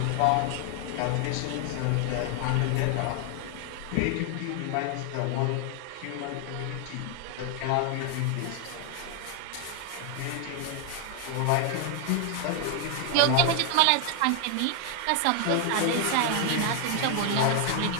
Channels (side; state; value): both; different; correlation 0.00